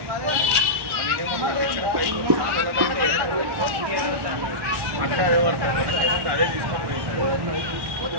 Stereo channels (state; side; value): late; left; 1.1 ms